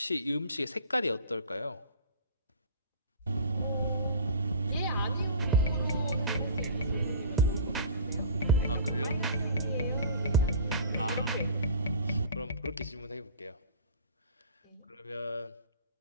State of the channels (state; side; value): inverted; both; correlation -0.40